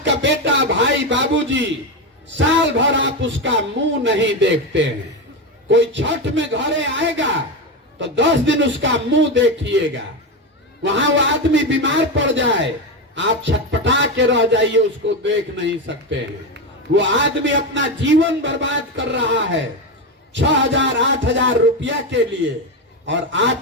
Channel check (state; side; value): normal; both; correlation 0.14